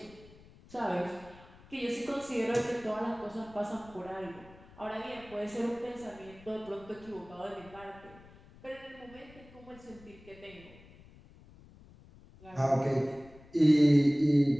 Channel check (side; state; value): left; noise; rumble, 22 dB below the sound